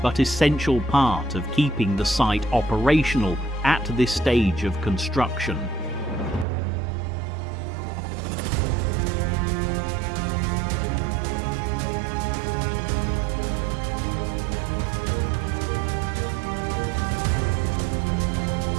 but essential part of keeping the site operational at this stage of construction.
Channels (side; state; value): left; drops out; at 6.5 s